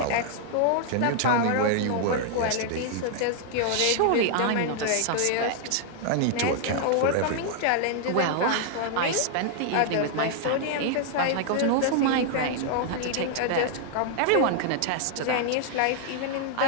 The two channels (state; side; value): different; both; correlation 0.00